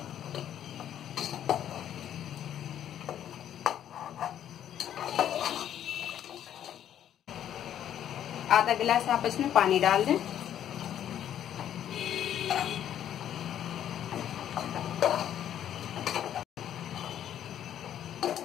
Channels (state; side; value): quieter; right; 10.5 dB